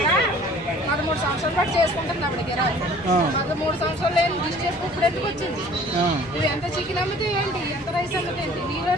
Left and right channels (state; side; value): normal; both; correlation 0.51